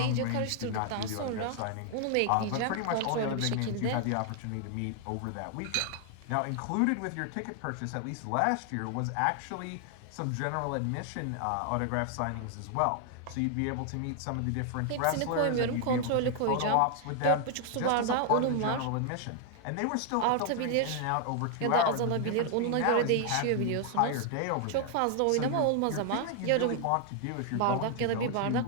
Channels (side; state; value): both; different; correlation 0.00